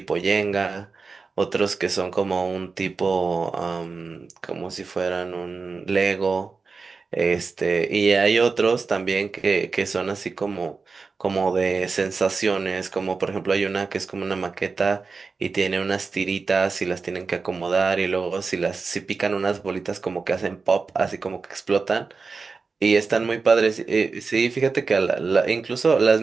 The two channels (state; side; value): quieter; left; 4.5 dB